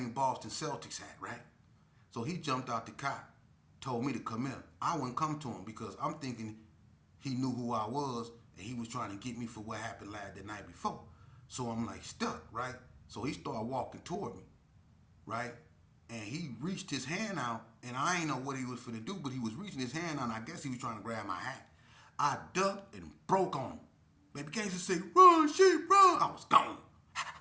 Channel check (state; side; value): identical; both; correlation 1.00